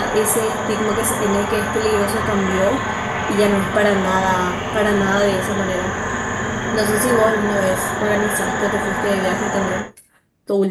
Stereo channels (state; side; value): identical; both; correlation 1.00